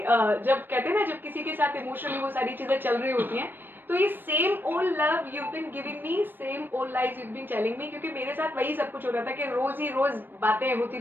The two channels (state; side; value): late; left; 0.095 ms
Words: कहते हैं ना जब किसी के साथ इमोशनली वो सारी चीजें चल रही होती हैं तो ये same old love you been giving me, same old lies you been telling me, क्योंकि मेरे साथ वही सब कुछ हो रहा था कि रोज ही रोज बातें होती